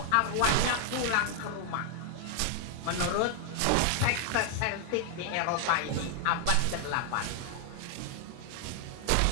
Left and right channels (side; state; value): both; different; correlation 0.00